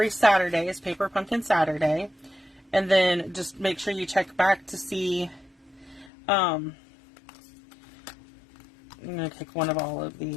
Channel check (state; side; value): drops out; right; at 6.1 s